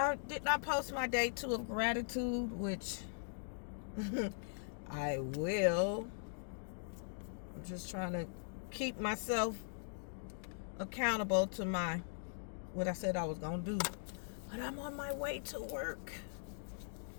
did not post my day 2 of gratitude, which I will. I'm just trying to keep myself accountable to what I said I was going to do. But I'm on my way to work.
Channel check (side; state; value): right; silent; digital silence